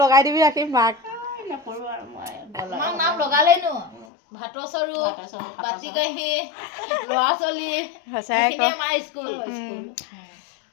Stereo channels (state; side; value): drops out; right; at 4.0 s